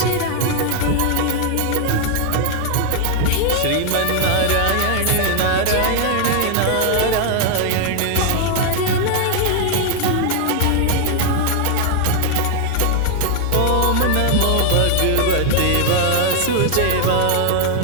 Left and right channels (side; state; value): both; different; correlation 0.00